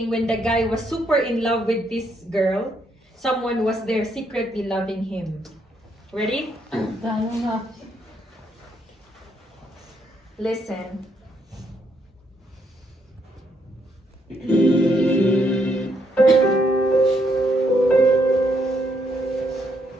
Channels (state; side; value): normal; both; correlation 0.74